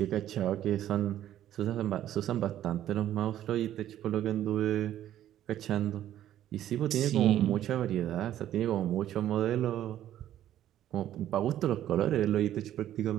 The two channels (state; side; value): quieter; left; 12.0 dB